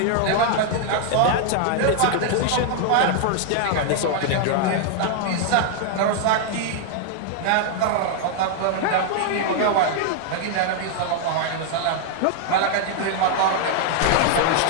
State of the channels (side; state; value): both; different; correlation 0.00